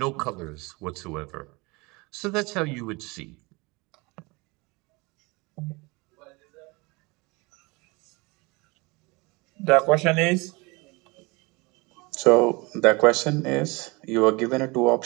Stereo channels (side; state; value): left; quieter; 25.7 dB